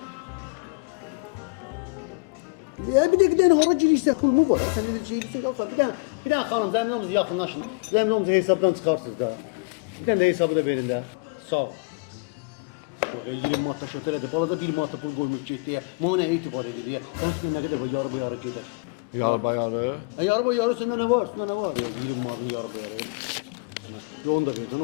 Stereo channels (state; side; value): quieter; right; 29.7 dB